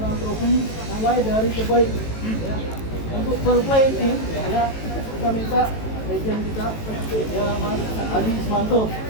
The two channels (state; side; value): late; right; 18 ms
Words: trofi mulai dari terbaik ya. Untuk fair play team ya kita minta legend kita ya Mas Adi Ismanto